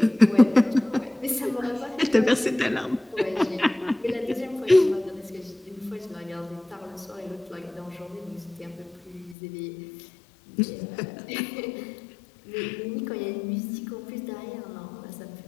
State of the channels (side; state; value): right; drops out; at 9.3 s